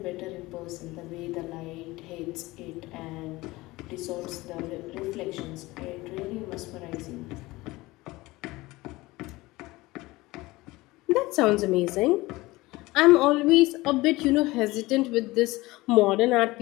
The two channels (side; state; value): right; quieter; 20.2 dB